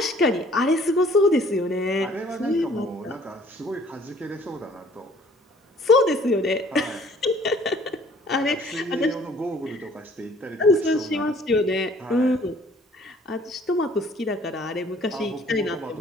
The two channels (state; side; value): normal; both; correlation 0.56